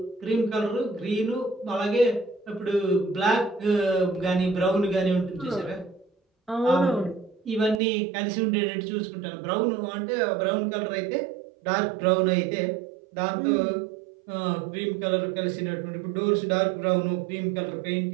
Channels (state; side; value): drops out; left; at 7.8 s